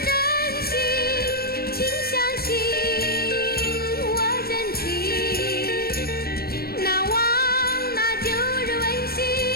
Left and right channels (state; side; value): late; right; 0.44 ms